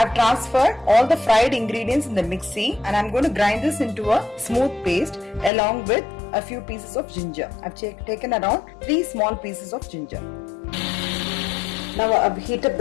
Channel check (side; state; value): right; drops out; at 5.5 s